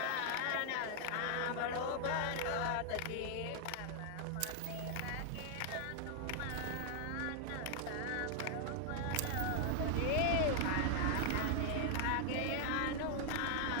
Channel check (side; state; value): both; different; correlation 0.00